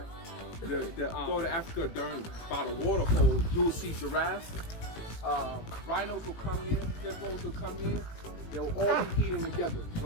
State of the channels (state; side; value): late; right; 18 ms